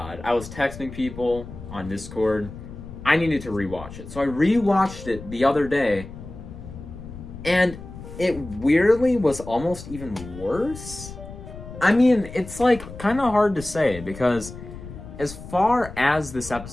I was texting people on Discord. I needed to rewatch it. So I rewatched it the other day, and it weirdly was almost even worse. I mean, it's like kind of hard to say because as far as this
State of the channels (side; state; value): left; noise; rumble, 13 dB below the sound